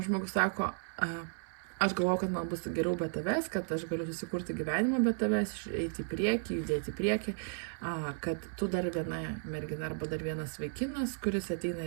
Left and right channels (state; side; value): silent; left; digital silence